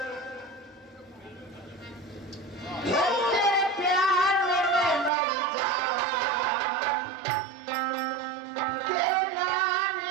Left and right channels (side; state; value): left; drops out; at 5.1 s